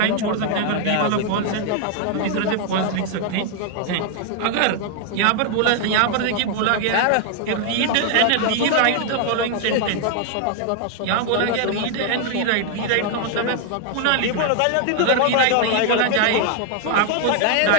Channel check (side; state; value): both; different; correlation 0.00